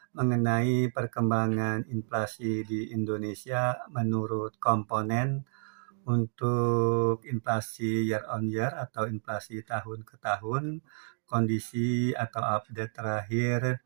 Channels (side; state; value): left; silent; digital silence